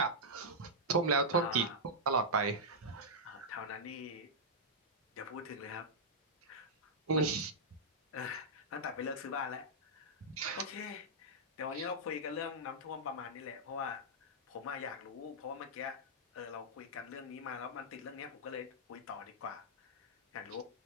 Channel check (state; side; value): normal; both; correlation -0.08